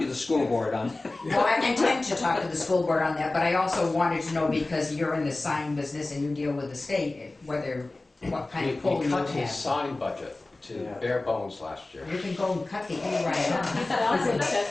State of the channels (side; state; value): right; quieter; 3.0 dB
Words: the school board on that. well, I intend to talk to the school board on that, but I also wanted to know, because you're in the sign business and you deal with the state, what kind of pull We you would cut his have. sign budget to Yeah. bare bones last year. You can go and cut the E right off. You could also